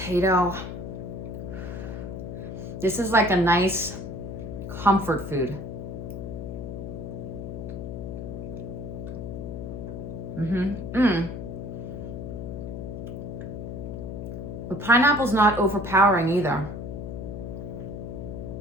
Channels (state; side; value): noise; left; hum, 7 dB below the sound